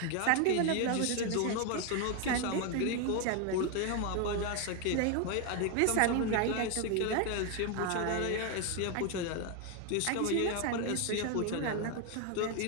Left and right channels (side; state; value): both; different; correlation 0.01